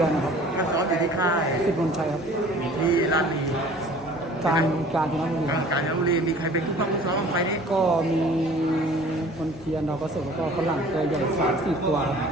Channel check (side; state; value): both; normal; correlation 0.49